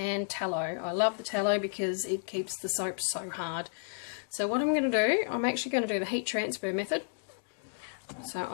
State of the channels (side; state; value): right; silent; digital silence